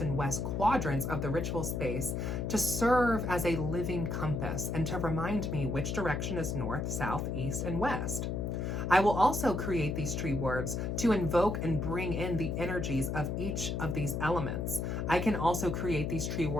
and west quadrants of the ritual space to serve as a living compass and to remind me which direction is north, south, east, and west. I will also create these tree wards to invoke and bring in the energies of each of these elements. I can also create these tree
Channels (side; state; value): left; noise; hum, 1 dB below the sound